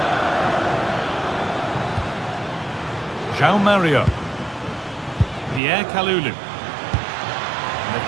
João Mario. Pierre Kalulu. And they've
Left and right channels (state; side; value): drops out; left; at 5.6 s